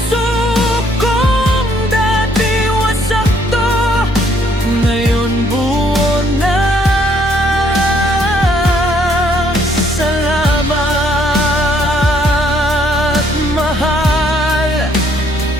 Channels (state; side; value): normal; both; correlation 0.67